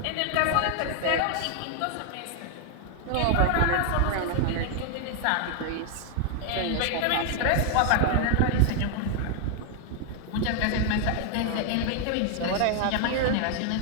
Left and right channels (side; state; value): both; different; correlation 0.00